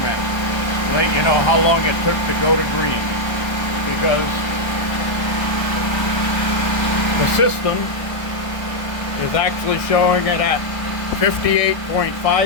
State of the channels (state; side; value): late; right; 1.2 ms